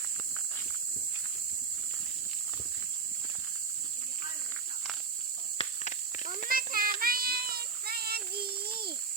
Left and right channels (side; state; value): left; quieter; 5.3 dB